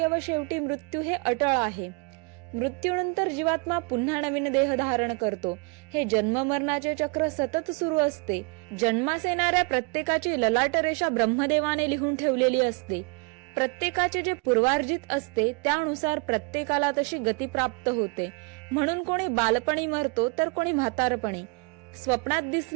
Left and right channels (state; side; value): quieter; left; 32.3 dB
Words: व शेवटी मृत्यू हे अटळ आहे. मृत्यूनंतर जीवात्मा पुन्हा नवीन देह धारण करतो. हे जन्ममरणाचे चक्र सतत सुरू असते. जन्मास येणाऱ्या प्रत्येकाची ललाट रेषा ब्रह्मदेवाने लिहून ठेवलेली असते. प्रत्येकाचे जे पूर्वार्जित असते त्यानुसार प्रत्येकाला तशी गती प्राप्त होते. म्हणून कोणी बालपणी मरतो तर कोणी म्हातारपणी. स्वप्नात